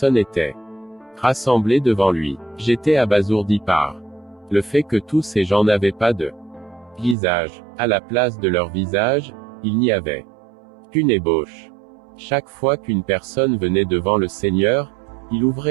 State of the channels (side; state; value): left; drops out; at 7.2 s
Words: étaient rassemblées devant lui. J'étais abasourdi par le fait que tous ces gens n'avaient pas de visage. À la place de leur visage, il n'y avait qu'une ébauche. Chaque fois qu'une personne venait devant le Seigneur, il